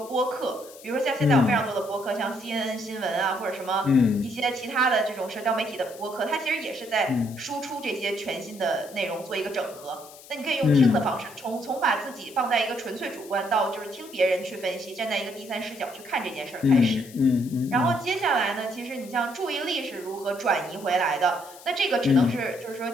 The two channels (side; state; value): left; noise; hiss, 20 dB below the sound